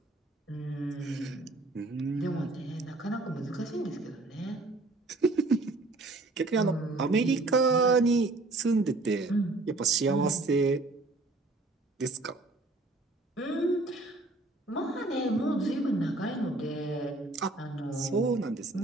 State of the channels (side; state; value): left; quieter; 3.1 dB